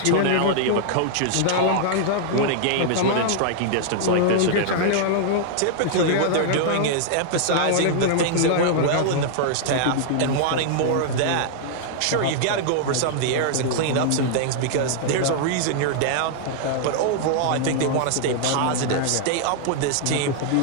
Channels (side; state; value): both; different; correlation -0.01